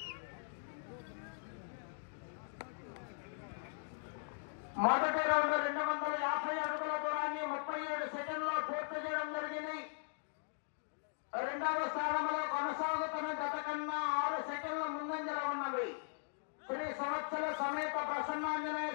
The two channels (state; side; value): silent; right; digital silence